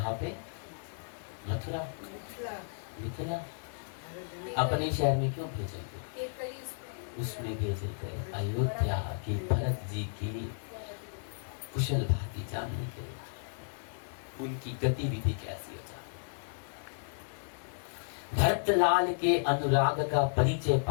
पे? मथुरा, मिथिला। अपने शहर में क्यों भेजेंगे? उसमें भेजे गए अयोध्या की भरत जी की कुशल भांति जानने के लिए, उनकी गतिविधि कैसी हो जाए। भरतलाल के अनुराग का परिचय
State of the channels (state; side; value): silent; right; digital silence